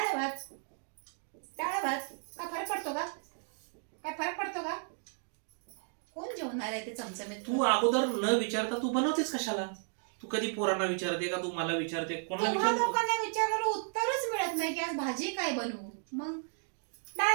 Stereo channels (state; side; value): silent; left; 55 dB below the other